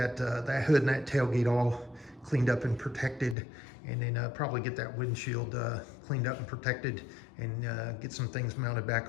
hood and that tailgate all cleaned up and protected. And then probably get that windshield cleaned up and protected, and get some things mounted back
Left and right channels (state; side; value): drops out; right; at 3.4 s